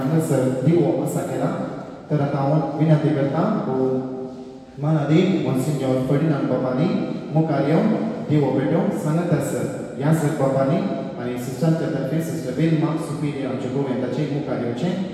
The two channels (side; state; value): both; identical; correlation 1.00